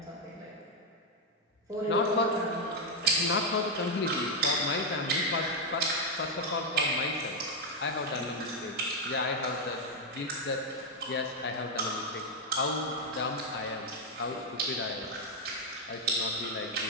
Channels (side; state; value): both; normal; correlation 0.01